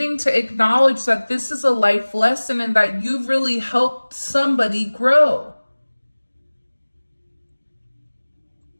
to acknowledge that this is a life lesson and that you've really helped somebody grow.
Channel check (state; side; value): inverted; both; correlation -1.00